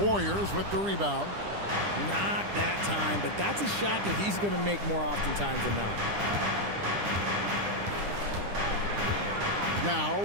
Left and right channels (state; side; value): late; left; 10 ms